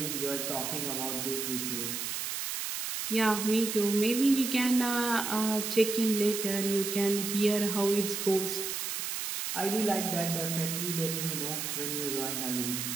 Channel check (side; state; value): right; noise; hiss, 3 dB below the sound